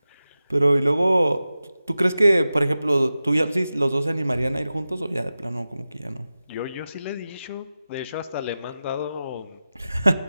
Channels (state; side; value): inverted; both; correlation -0.94